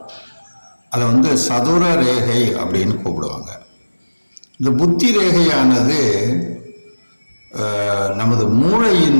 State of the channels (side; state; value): both; inverted; correlation -1.00